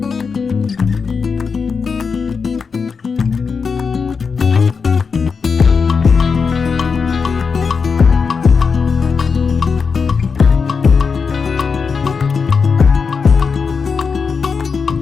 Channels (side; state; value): right; quieter; 5.4 dB